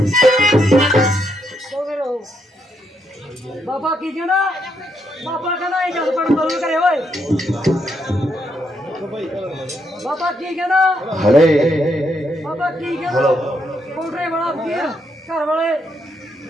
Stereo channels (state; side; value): normal; both; correlation 0.77